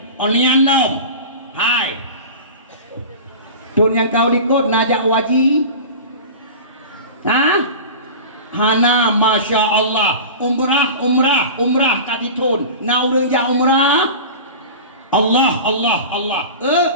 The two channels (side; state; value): both; inverted; correlation -0.33